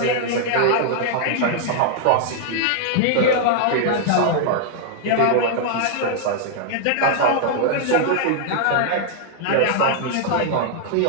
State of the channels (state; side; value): different; both; correlation 0.00